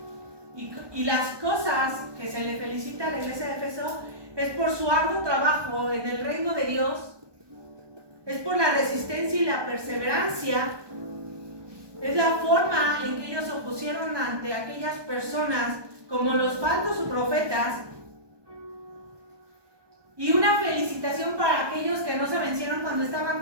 Y las cosas que se le felicita a la iglesia de Éfeso es por su arduo trabajo en el reino de Dios, es por la resistencia y la perseverancia, es la forma en que ellos se opusieron ante aquellas personas como los falsos profetas, y una felicitación para aquellos que no se vencieron cuando estaban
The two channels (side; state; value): left; late; 1.2 ms